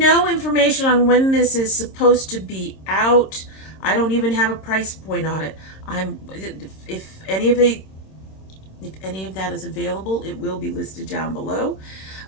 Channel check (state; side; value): late; right; 26 ms